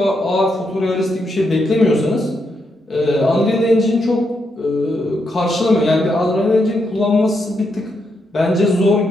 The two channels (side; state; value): both; normal; correlation 0.81